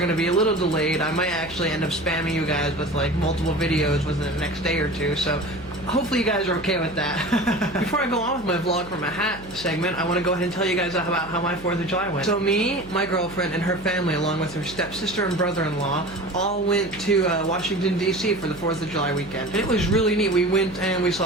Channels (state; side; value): noise; right; hum, 18 dB below the sound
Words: to be a little delayed. I might actually end up spamming you guys with like multiple videos within the next day or two, so hopefully you guys are okay with that. Before I go on with my vlog from a hat segment, I want to go ahead and tell you guys about how my 4th of July went. So me, my girlfriend, and her family, along with her stepsister and brother-in-law, all went to Washington, D.C. for the 4th of July weekend. And it was really neat. We went and we